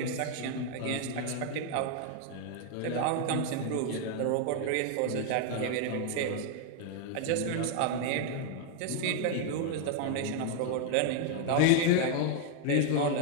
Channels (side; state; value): both; different; correlation 0.00